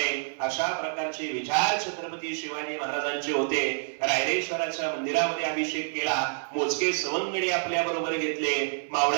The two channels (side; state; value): left; silent; 58 dB below the other